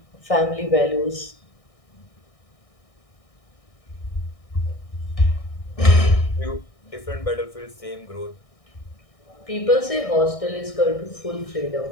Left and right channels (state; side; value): late; right; 1.6 ms